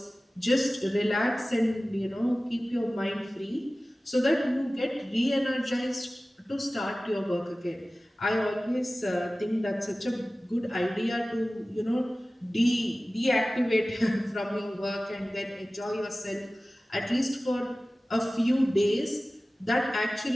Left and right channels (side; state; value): both; normal; correlation 0.97